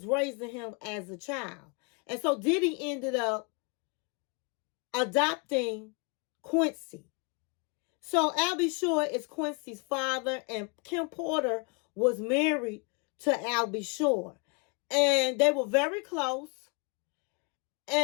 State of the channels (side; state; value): right; quieter; 32.8 dB